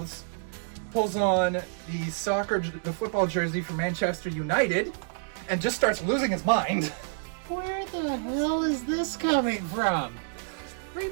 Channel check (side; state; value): left; silent; digital silence